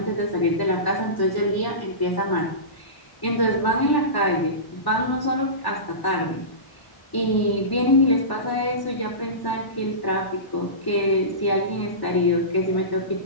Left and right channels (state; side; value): late; right; 1.0 ms